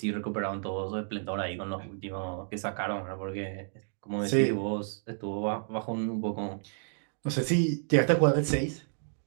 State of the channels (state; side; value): silent; left; digital silence